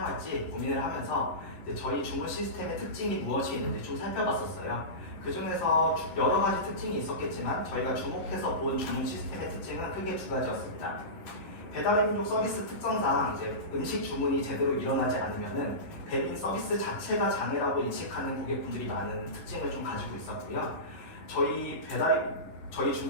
고민을 하면서 저희 주문 시스템의 특징이 무엇이 있는지 좀 살펴봤었어요. 그 중에서 여러 가지 특징이 있었겠지만 저희가 주목해서 본 주문 시스템의 특징은 크게 두 가지였습니다. 배달의 민족 서비스 특성상 이제 음식 주문이 제대로 일어나지 않으면은 배민 서비스 자체가 장애라고 인식하는 고객분들이 많은 특징을 좀 가지고 있었고요. 저희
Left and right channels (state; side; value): late; right; 11 ms